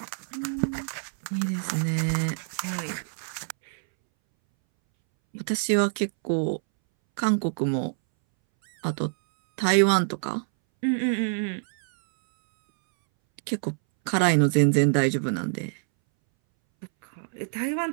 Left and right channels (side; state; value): left; silent; 61 dB below the other